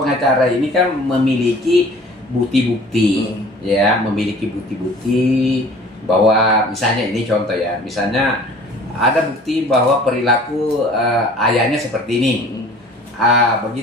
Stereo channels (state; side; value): normal; both; correlation 0.48